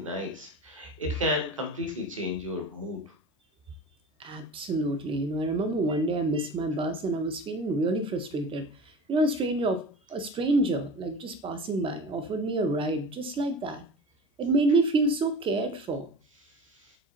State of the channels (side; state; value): both; normal; correlation 0.35